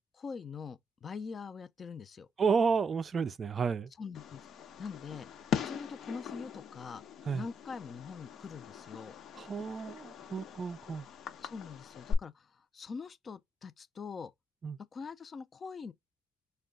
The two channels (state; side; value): normal; both; correlation 0.80